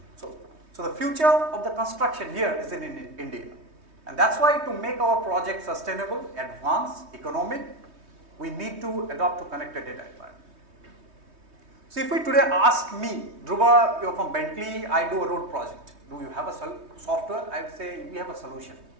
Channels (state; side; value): late; left; 3.2 ms